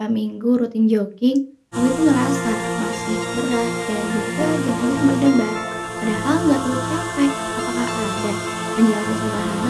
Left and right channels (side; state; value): both; identical; correlation 1.00